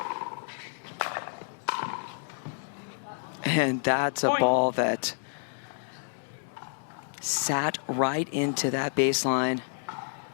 And that's a ball that sat right into that baseline.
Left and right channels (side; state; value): right; silent; digital silence